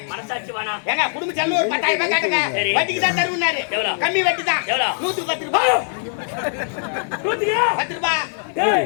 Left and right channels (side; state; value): right; silent; 65 dB below the other